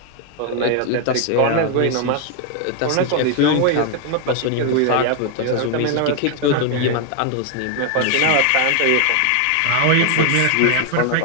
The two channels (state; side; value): different; both; correlation 0.00